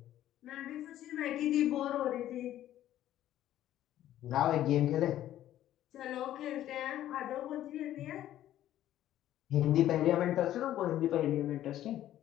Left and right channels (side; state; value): right; quieter; 12.7 dB